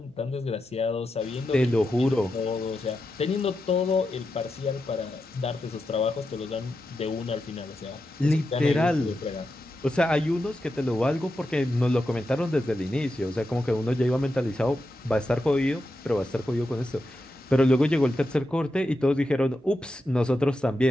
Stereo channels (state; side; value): noise; right; hum, 30 dB below the sound